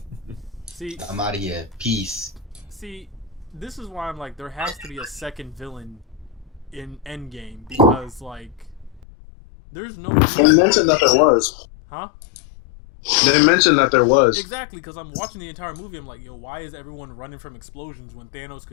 See, I'm out of here. Peace. See, this is why I'm like, there has to be a second villain in Endgame because, like, there's no. They mentioned that there was. Huh? They mentioned that there was. Exactly, because I'm watching the entire movie. I'm like, yo, why is everyone running from explosions when Thanos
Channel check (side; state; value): right; drops out; at 9.1 s